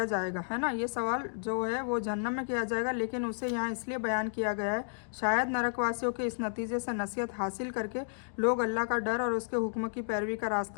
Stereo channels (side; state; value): right; silent; digital silence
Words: जाएगा, है ना, ये सवाल जो है वो जहन्नम में किया जाएगा, लेकिन उसे यहाँ इसलिए बयान किया गया है शायद नरकवासियों के इस नतीजे से नसीहत हासिल करके लोग अल्लाह का डर और उसके हुक्म की पैरवी का